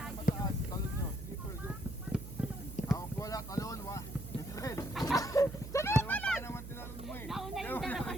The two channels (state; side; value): noise; right; hum, 10 dB below the sound